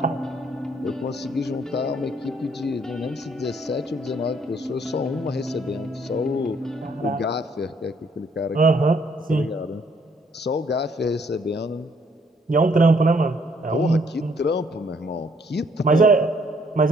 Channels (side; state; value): both; normal; correlation 0.66